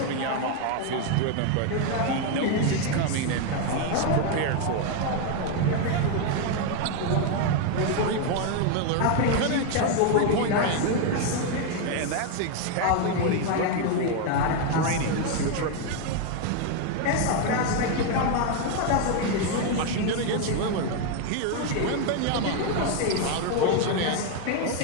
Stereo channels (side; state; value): both; different; correlation 0.01